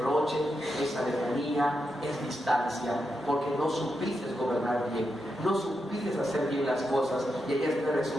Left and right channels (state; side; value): normal; both; correlation 0.86